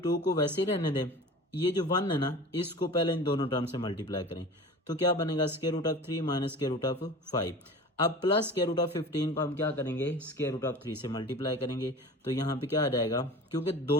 को वैसे ही रहने दें, ये जो 1 है ना इसको पहले इन दोनों टर्म से मल्टीप्लाई करें तो क्या बनेगा, square root of 3 minus square root of 5। अब प्लस स्क्वायर रूट ऑफ 15 को हम क्या करेंगे, स्क्वायर रूट ऑफ 3 से मल्टीप्लाई करेंगे तो यहाँ पे क्या आ जाएगा, क्योंकि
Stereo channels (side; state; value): both; normal; correlation 0.37